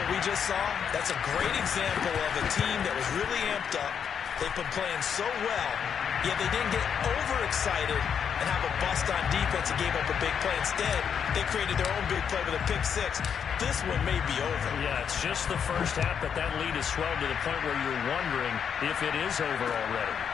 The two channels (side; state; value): right; quieter; 7.5 dB